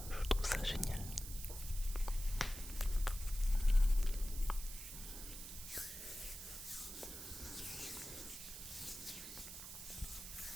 je trouve ça génial.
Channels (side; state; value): right; noise; hiss, 9 dB below the sound